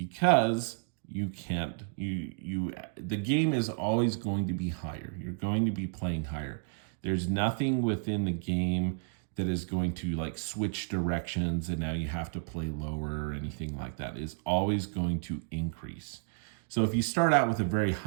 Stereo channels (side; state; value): left; silent; digital silence